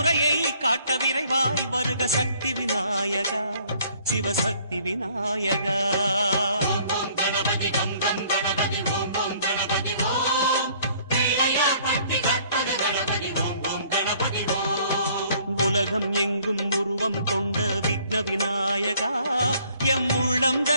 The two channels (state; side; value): inverted; both; correlation -0.59